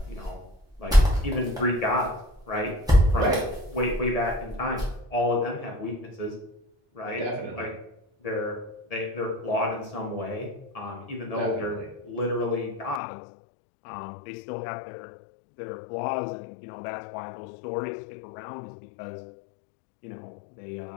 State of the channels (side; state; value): right; drops out; at 13.0 s